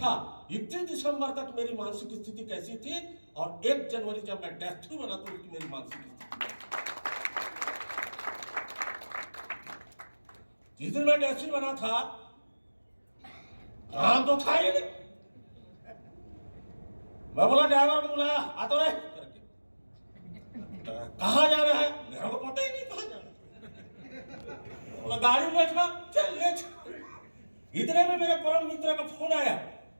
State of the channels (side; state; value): both; inverted; correlation -1.00